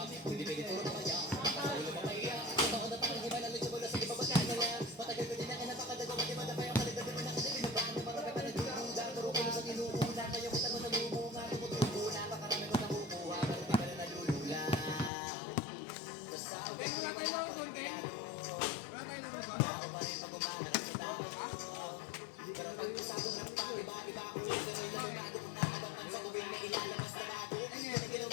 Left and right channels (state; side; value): drops out; right; at 15.1 s